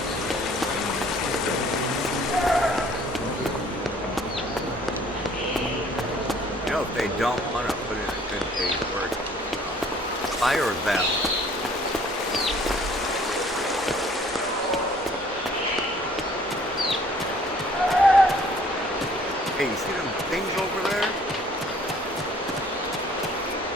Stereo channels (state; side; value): normal; both; correlation 0.57